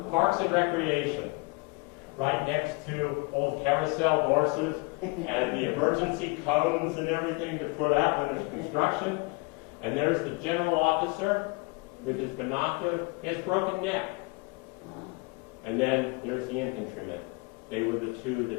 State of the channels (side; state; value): right; quieter; 27.6 dB